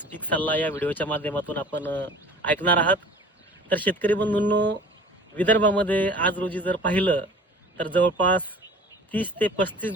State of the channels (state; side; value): normal; both; correlation 0.45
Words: पीक सल्ला या व्हिडिओच्या माध्यमातून आपण ऐकणार आहात. तर शेतकरी बंधूंनो, विदर्भामध्ये आज रोजी जर पाहिलं तर जवळपास 30 ते 35